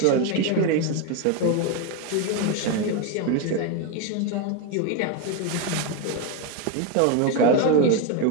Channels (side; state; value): both; different; correlation 0.02